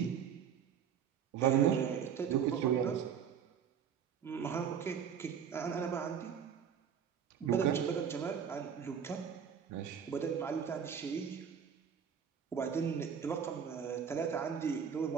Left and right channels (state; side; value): quieter; left; 7.8 dB